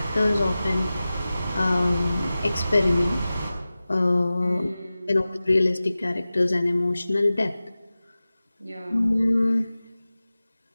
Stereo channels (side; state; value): both; inverted; correlation -0.96